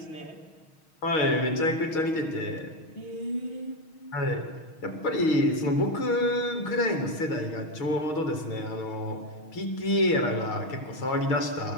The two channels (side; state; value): right; late; 6.4 ms